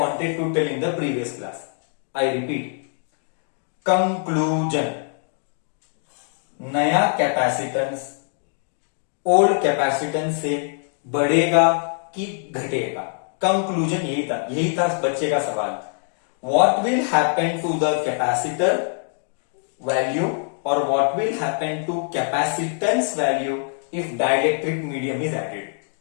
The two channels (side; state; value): right; silent; 63 dB below the other